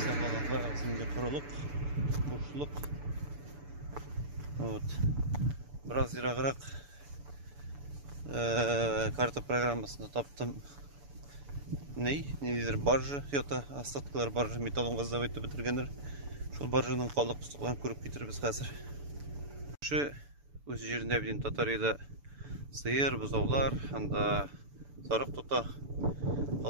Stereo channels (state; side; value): late; left; 6.9 ms